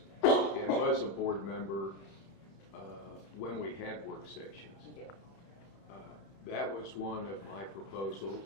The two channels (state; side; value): late; right; 31 ms